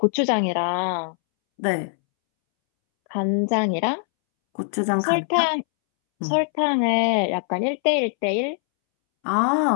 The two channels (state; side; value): silent; right; 64 dB below the other